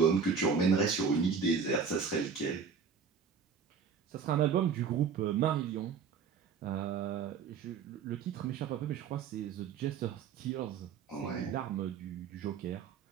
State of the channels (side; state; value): left; quieter; 6.2 dB